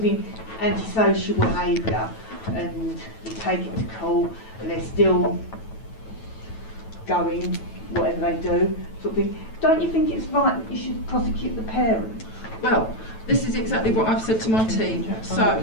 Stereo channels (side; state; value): right; late; 9.1 ms